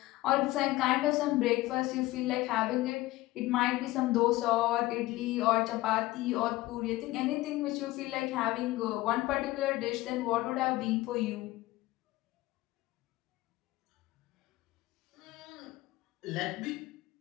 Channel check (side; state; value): right; quieter; 18.2 dB